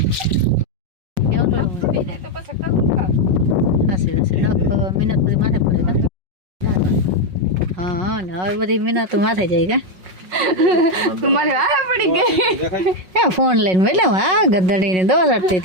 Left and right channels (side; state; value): left; late; 5.4 ms